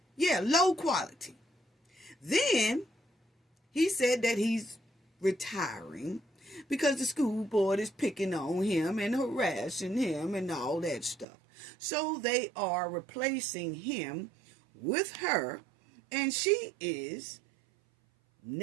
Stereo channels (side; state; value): left; drops out; at 11.2 s